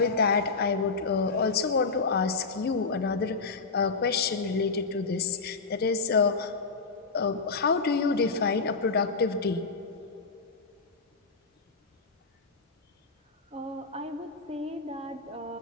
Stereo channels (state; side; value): quieter; right; 4.4 dB